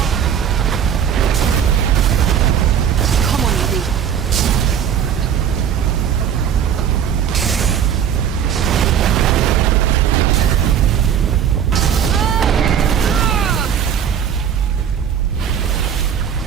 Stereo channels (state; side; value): quieter; left; 8.6 dB